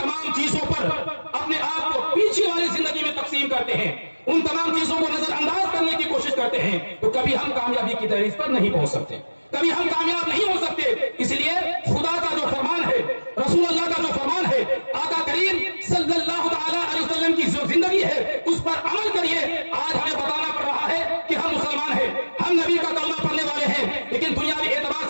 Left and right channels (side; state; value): both; inverted; correlation -1.00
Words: چیزوں پر اپنے آپ کو پیچھے والی زندگی میں تقسیم کرتے ہیں، ان تمام چیزوں کو نظر انداز کرنے کی کوشش کرتے ہیں تو کبھی ہم کامیابی کی دہلیز پر نہیں پہنچ سکتے، کبھی ہم کامیاب نہیں ہو سکتے. اس لیے خدا کا جو فرمان ہے، رسول اللہ کا جو فرمان ہے، آقا کریم صلی اللہ تعالی علیہ وسلم کی جو زندگی ہے اس پر عمل کریے. آج ہمیں بتانا پڑ رہا ہے کہ ہم مسلمان ہیں، ہم نبی کا کلمہ پڑھنے والے ہیں، لیکن دنیاوی اعتبار